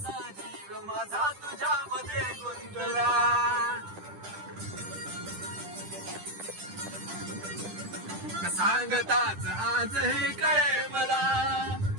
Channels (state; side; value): late; left; 10 ms